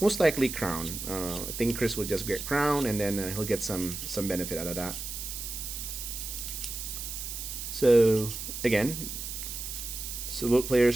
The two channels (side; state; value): right; noise; hiss, 7 dB below the sound